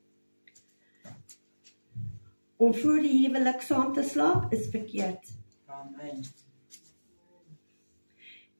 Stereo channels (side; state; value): both; inverted; correlation -1.00